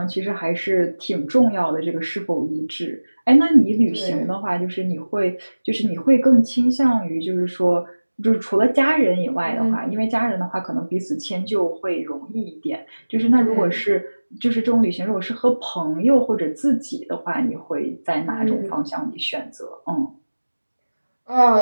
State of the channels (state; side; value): inverted; both; correlation -1.00